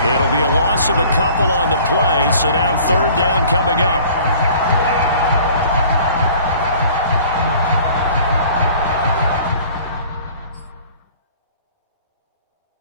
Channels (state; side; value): inverted; both; correlation -0.50